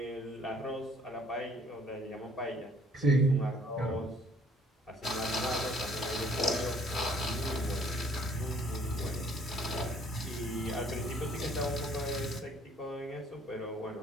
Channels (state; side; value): normal; both; correlation 0.60